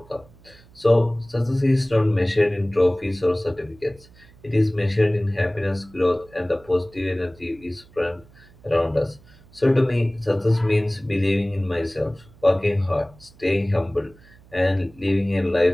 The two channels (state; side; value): noise; right; hum, 26 dB below the sound